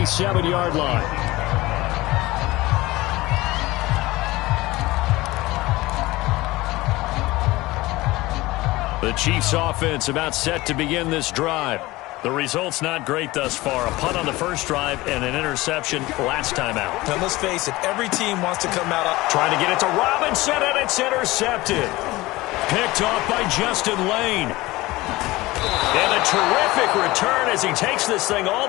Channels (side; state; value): right; quieter; 19.7 dB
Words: line. The Chiefs offense about set to begin this drive. The result's not great thus far. A punt on the first drive and an interception last time out. Now let's face it, every team wants to come out up. Trying to get it to Robinson, and it's intercepted. Picked off by Justin Lane. And a terrific return as he takes this thing all